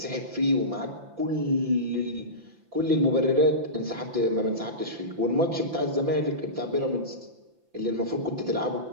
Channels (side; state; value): left; late; 5.9 ms